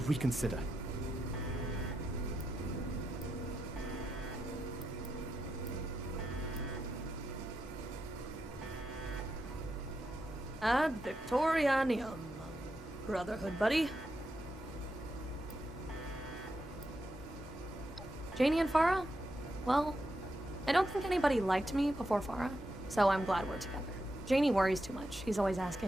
Ad Victorianium, Brotherhood buddy. Janie and Farah? Well, I don't think anybody liked me before Farah, so I'm glad we're together. Janie worries too much. He's always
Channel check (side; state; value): both; normal; correlation 0.85